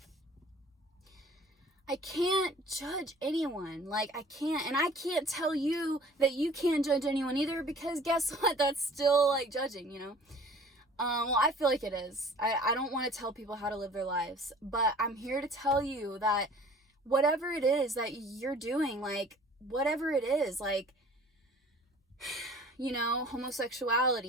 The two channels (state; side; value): normal; both; correlation 0.49